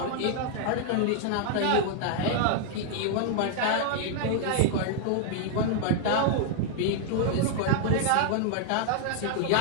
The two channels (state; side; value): different; both; correlation -0.01